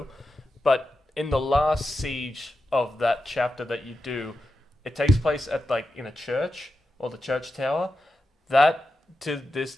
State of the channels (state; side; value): normal; both; correlation 0.90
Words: But in the last siege of that chapter that you do, it takes place at like in a church or the church tower. That to this